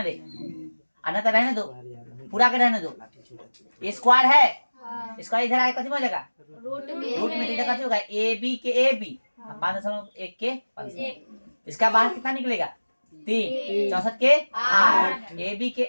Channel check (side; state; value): both; inverted; correlation -1.00